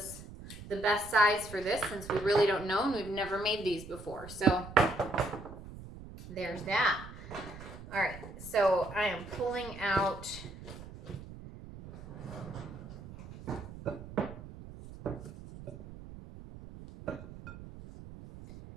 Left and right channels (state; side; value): noise; right; rumble, 14 dB below the sound